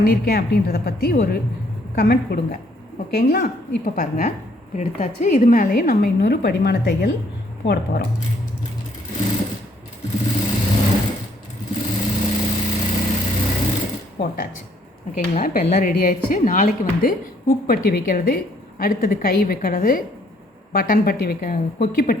அப்படின்றத பற்றி ஒரு கமெண்ட் கொடுங்க, ஓகேங்களா. இப்போ பாருங்கள் இப்படி எடுத்தாச்சு. இது மேலேயே நம்ம இன்னொரு படிமான தையல் போட போகிறோம். போட்டாச்சு, ஓகேங்களா. இப்போ எல்லாம் ரெடி ஆயிடுச்சு. நாளைக்கு வந்து ஹூக் பட்டி வைக்கிறது, அடுத்தது கை வைக்கிறது, பட்டன் பட்டி கொக்கி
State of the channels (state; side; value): normal; both; correlation 0.66